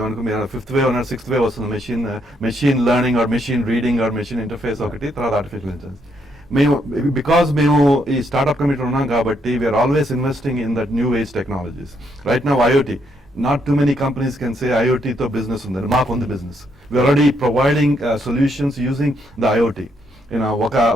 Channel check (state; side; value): normal; both; correlation 0.74